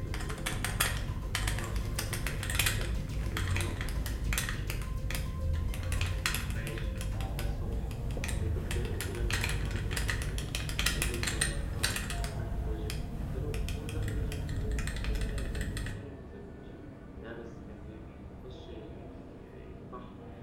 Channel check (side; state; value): both; identical; correlation 1.00